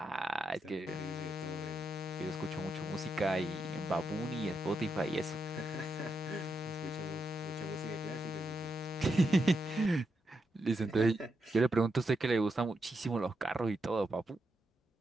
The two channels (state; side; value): normal; both; correlation 0.84